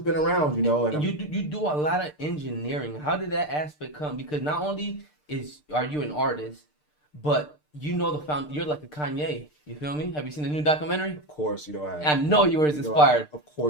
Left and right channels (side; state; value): right; late; 6.7 ms